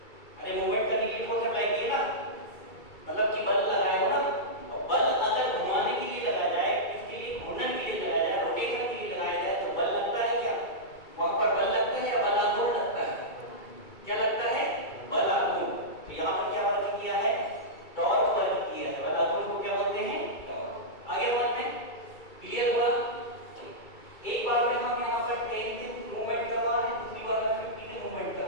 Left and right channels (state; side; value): late; right; 2.3 ms